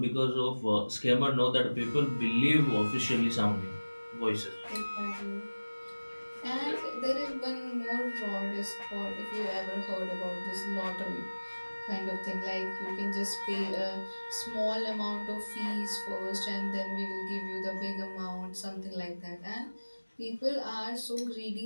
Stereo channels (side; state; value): both; inverted; correlation -1.00